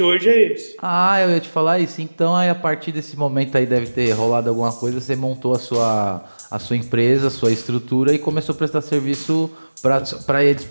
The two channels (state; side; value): inverted; both; correlation -1.00